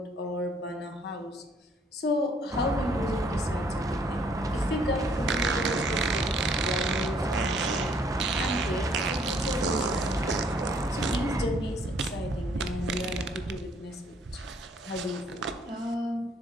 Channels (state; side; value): normal; both; correlation 0.63